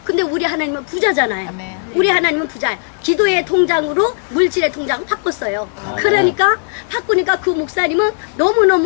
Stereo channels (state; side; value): silent; right; digital silence